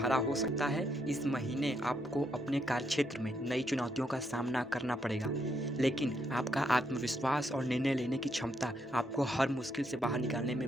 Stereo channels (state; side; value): normal; both; correlation 0.77